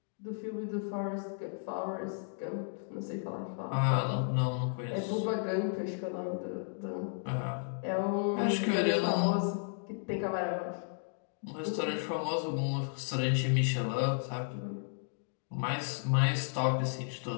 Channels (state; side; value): silent; right; digital silence